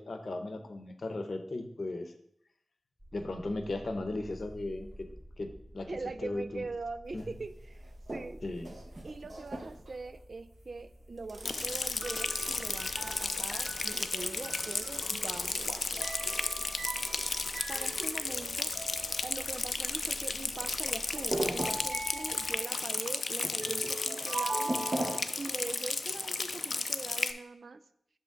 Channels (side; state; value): both; normal; correlation 0.92